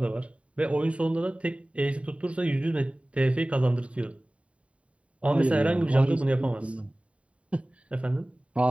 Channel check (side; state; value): left; late; 0.063 ms